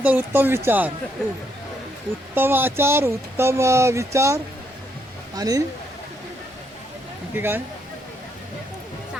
तर उत्तम विचार, उत्तम आचार, उत्तम विचार आणि काय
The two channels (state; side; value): normal; both; correlation 0.74